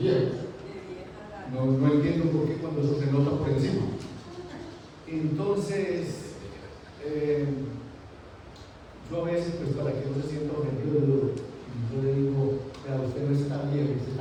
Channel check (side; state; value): both; identical; correlation 1.00